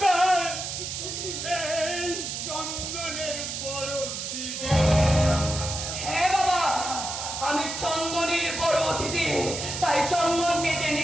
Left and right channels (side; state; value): right; noise; hiss, 5 dB below the sound